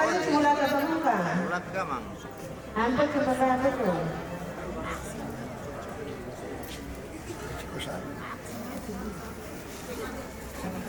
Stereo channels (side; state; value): both; identical; correlation 1.00